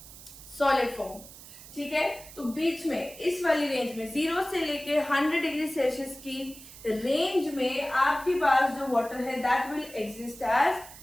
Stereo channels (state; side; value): noise; right; hiss, 17 dB below the sound